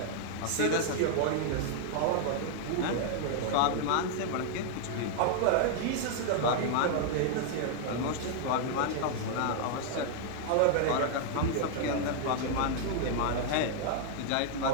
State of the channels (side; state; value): both; different; correlation 0.00